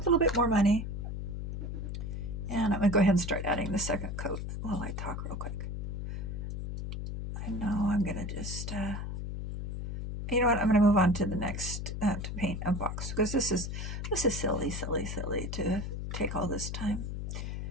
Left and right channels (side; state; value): left; noise; hum, 5 dB below the sound